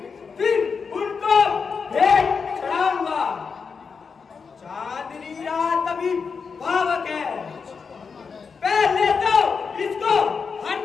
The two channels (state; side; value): quieter; right; 5.5 dB